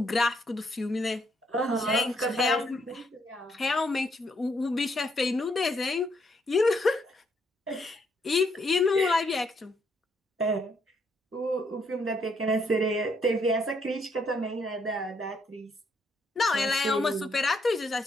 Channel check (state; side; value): normal; both; correlation 0.73